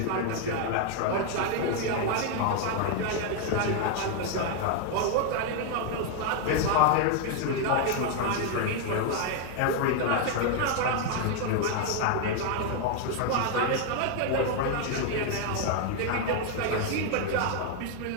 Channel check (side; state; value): both; different; correlation 0.00